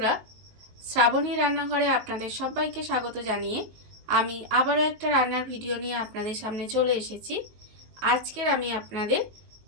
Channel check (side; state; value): left; late; 19 ms